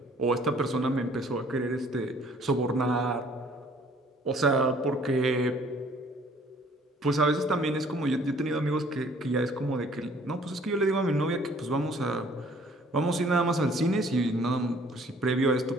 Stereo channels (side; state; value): both; normal; correlation 0.57